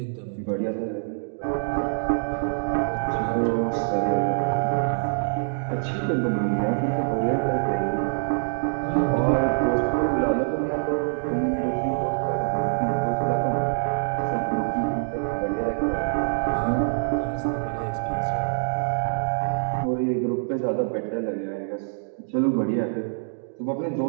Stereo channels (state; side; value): silent; left; digital silence